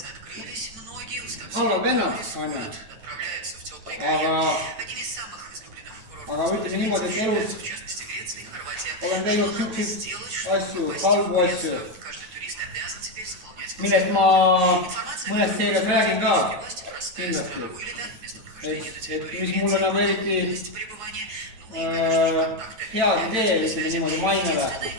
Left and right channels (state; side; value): late; left; 9.0 ms